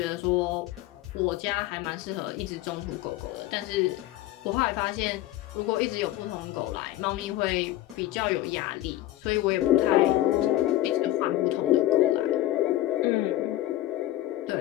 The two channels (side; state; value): right; quieter; 15.1 dB